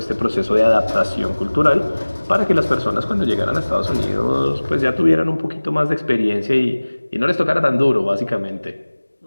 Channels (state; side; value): inverted; both; correlation -1.00